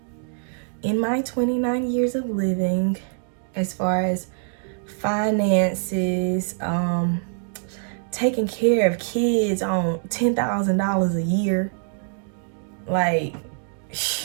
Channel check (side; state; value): left; silent; digital silence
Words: in my 29 years of living as far as finances, taking care of kids on $10,000 a year. Like,